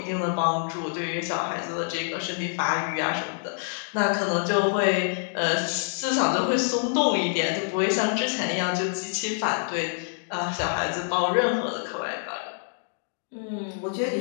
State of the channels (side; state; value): right; silent; digital silence